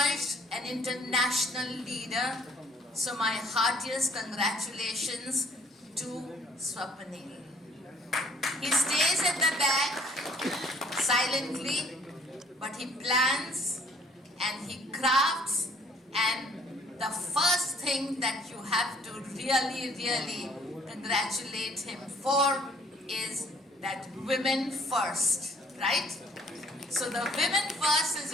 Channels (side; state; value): both; normal; correlation 0.59